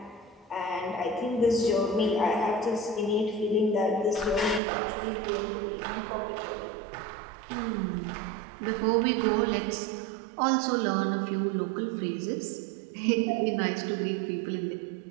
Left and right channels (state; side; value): drops out; left; at 4.6 s